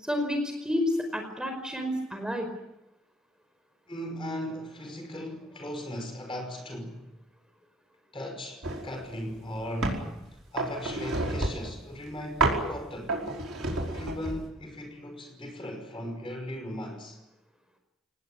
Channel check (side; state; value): both; normal; correlation 0.55